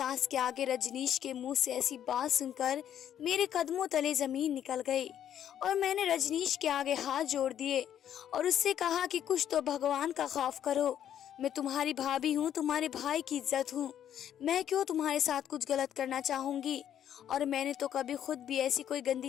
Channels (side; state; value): right; quieter; 10.2 dB